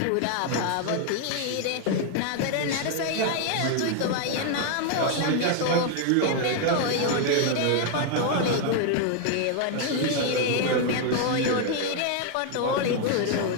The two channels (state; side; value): different; both; correlation 0.00